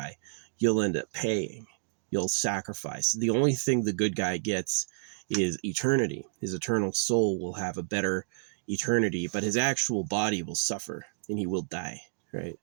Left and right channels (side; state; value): left; silent; digital silence